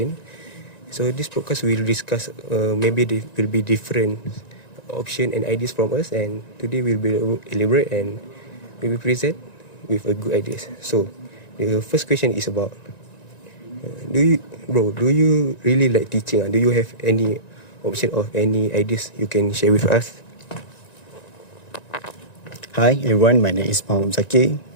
So this podcast will discuss maybe there will be different option and ideas from us, and today we will elaborate and we will present with a good ideas. So the first question is about do you really like teaching? Do you have any option or any ideas you can share with us? Hi everyone, my name is Muhammad Zaki.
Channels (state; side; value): late; right; 1.9 ms